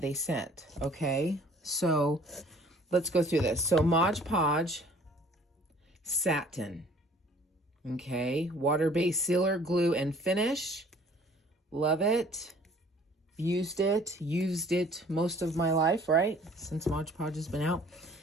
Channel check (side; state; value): both; normal; correlation 0.54